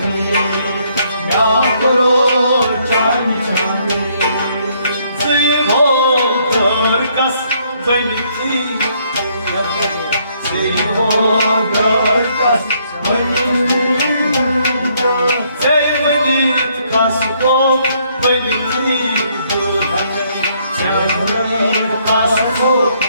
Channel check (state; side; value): inverted; both; correlation -0.69